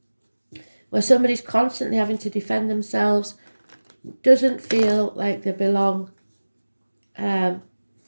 where somebody's constantly having to defend themselves, doesn't feel like they belong,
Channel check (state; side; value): inverted; both; correlation -1.00